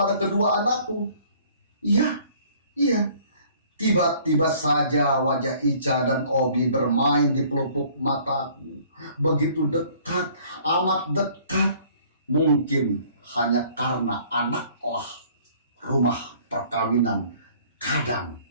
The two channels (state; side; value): inverted; both; correlation -0.56